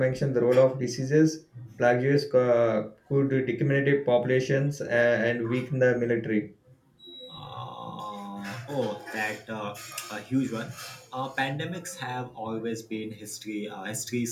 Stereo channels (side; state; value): both; identical; correlation 1.00